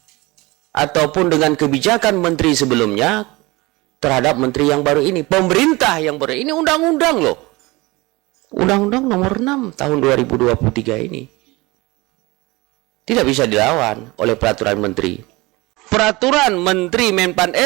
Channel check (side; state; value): left; quieter; 22.6 dB